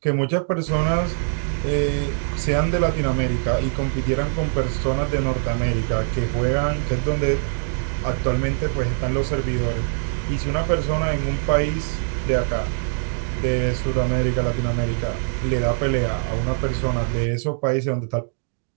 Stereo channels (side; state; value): left; silent; digital silence